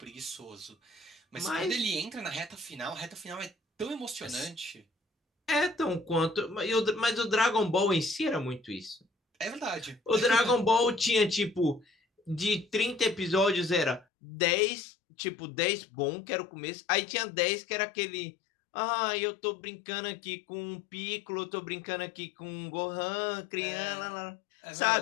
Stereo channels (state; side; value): drops out; right; at 14.1 s